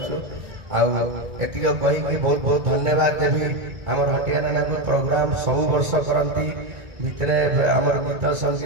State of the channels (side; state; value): left; late; 1.9 ms